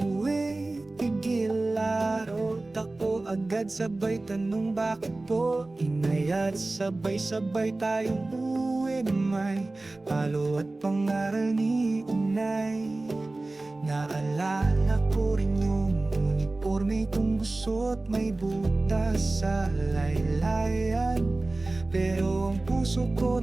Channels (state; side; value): quieter; left; 3.0 dB